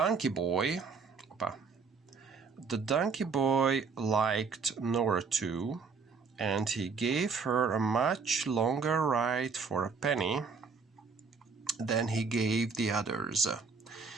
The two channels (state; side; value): quieter; left; 5.1 dB